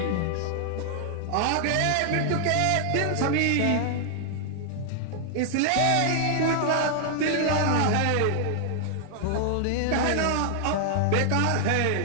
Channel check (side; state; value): both; different; correlation 0.00